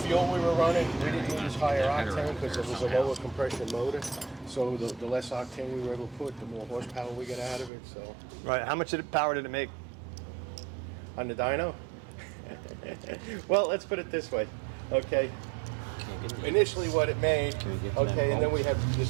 we were running, we didn't use higher octane because it was a lower compression motor. So the less octane we were able to put, the more horsepower we get out of it. So. Right. How much power did it make On the dyno? Well, let's put it this way. Okay. Initially what it made, okay, and then we had this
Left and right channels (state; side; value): drops out; left; at 7.7 s